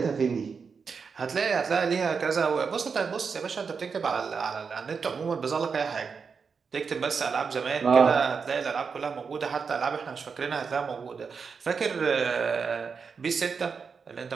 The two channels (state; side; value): quieter; left; 5.6 dB